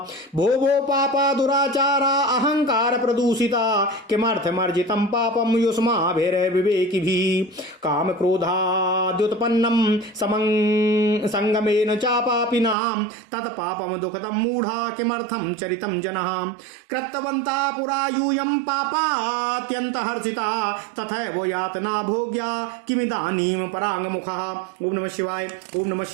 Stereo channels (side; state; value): left; drops out; at 12.8 s